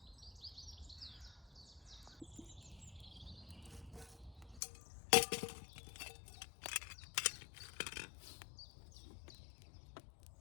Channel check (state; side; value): drops out; right; at 4.6 s